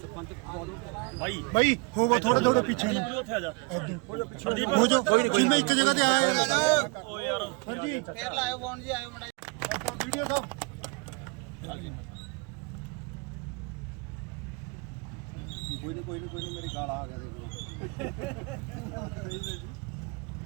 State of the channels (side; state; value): left; quieter; 31.5 dB